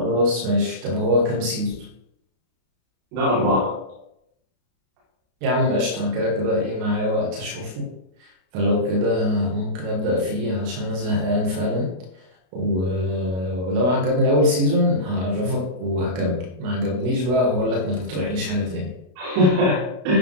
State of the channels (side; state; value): left; late; 33 ms